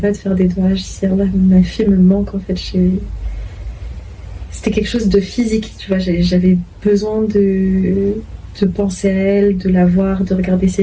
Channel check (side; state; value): both; identical; correlation 1.00